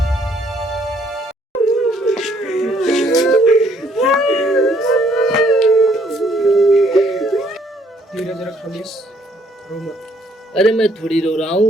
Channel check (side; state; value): both; normal; correlation 0.66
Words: धीरज रख खलीस, रो मत। अरे मैं थोड़ी रो रहा